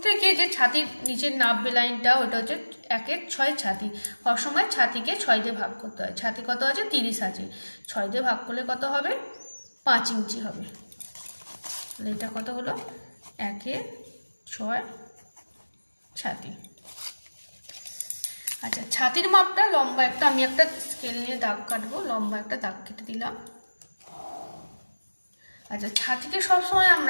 থেকে যে ছাতির নিচের নাববে লাইনটা, ওটা হচ্ছে 1/6 ছাতি। সবসময় ছাতিকে 6 দিয়ে ভাগ করতে হয়। ছাতি কত আছে? 30 আছে, 6 দিয়ে ভাগ করলে কত হবে? 5 ইঞ্চি হবে। তাহলে এটা কত হলো? 1/6 ছাতি। আচ্ছা, ছাতির মাপটা লম্বা একটা, আমি একটা স্কেল নিয়ে দাগ কাটবো, লম্বা একটা দাগ কেটে দিলাম। আচ্ছা, ছাতিকে সবসময়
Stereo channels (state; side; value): inverted; both; correlation -1.00